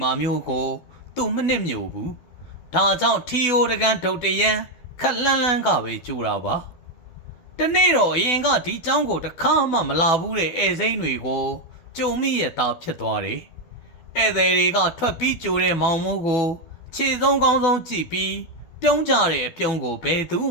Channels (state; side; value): late; right; 12 ms